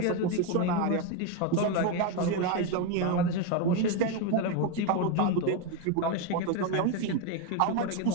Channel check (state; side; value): different; both; correlation 0.02